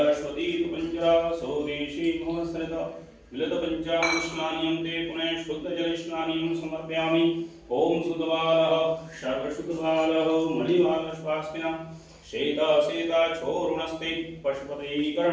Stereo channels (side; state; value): both; identical; correlation 1.00